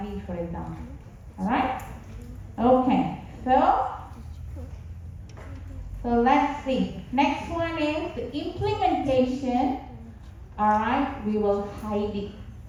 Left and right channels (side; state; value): both; identical; correlation 1.00